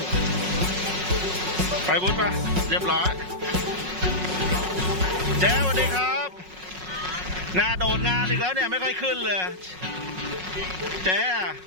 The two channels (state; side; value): late; left; 5.4 ms